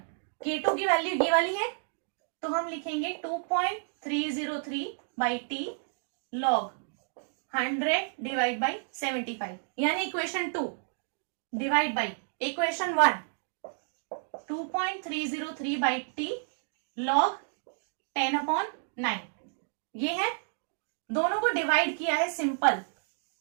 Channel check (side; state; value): left; silent; digital silence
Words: K2 की वैल्यू ये वाली है, तो हम लिखेंगे 2.303 by T log 100 divide by 75, यानी equation 2 divide by equation 1 2.303 by T log 10 upon 9। ये है, दोनों को डिवाइड किया है सिंपल।